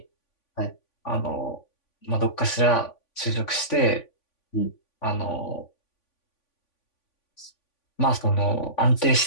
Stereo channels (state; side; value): late; right; 3.5 ms